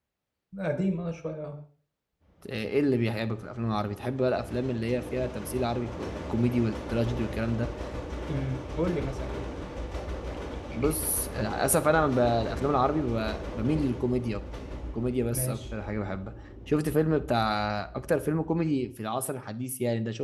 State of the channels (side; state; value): both; identical; correlation 1.00